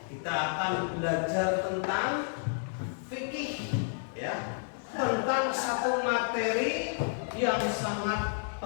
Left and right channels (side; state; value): right; silent; digital silence